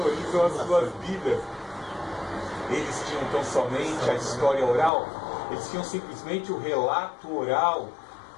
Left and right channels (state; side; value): drops out; right; at 4.9 s